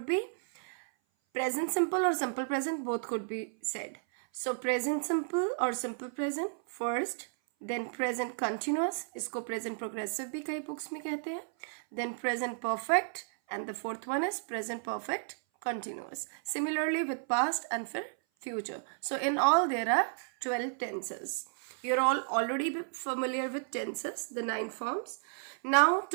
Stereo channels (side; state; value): left; silent; 56 dB below the other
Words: be present simple or simple present, both could be said. So present simple or simple present first, then present continuous, इसको present progressive भी कई books में कहते हैं, then present perfect, and the fourth one is present perfect continuous. Similarly with past and for future. So in all there are 12 tenses. You're all already familiar with tenses, the 9 forms. Now